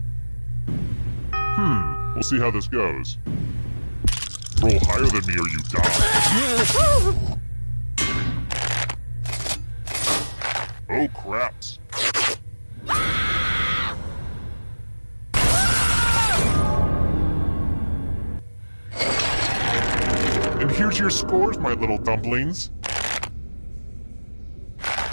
We'll see how this goes. Roll higher than me or you die. Oh, craps. And here's your scores, my little dumplings.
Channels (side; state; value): both; inverted; correlation -1.00